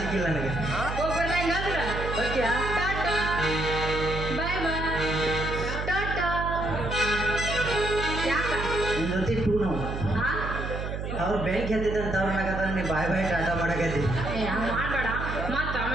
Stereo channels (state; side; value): noise; right; hum, 5 dB below the sound